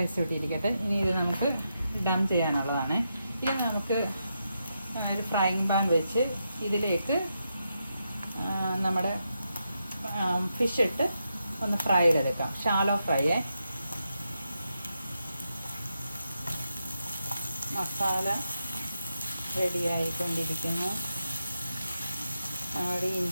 ഇട്ടിരിക്കട്ടെ. ഇനി ഇത് നമുക്ക് ഡം ചെയ്യാനുള്ളതാണ്. ഇത് നമുക്ക് ഒരു ഫ്രൈങ് പാൻ വെച്ച് ഇതിലേക്ക് നമ്മുടെ ഫിഷ് ഇട്ട് ഒന്ന് ഫ്രൈ ചെയ്തെടുക്കാം. Shallow fry. മസാല റെഡിയായിക്കൊണ്ടിരിക്കുന്നു. നമ്മുടെ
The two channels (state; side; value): inverted; both; correlation -0.84